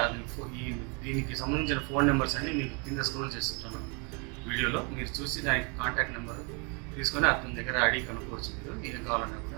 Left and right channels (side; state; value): left; quieter; 33.6 dB